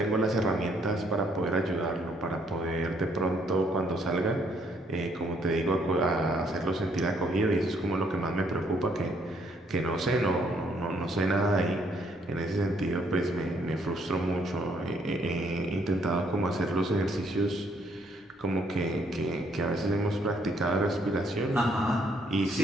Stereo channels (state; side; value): normal; both; correlation 0.68